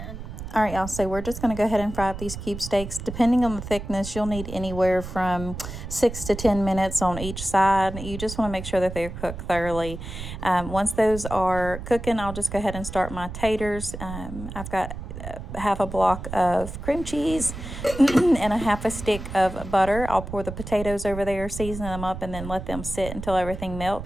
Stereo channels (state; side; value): noise; right; rumble, 9 dB below the sound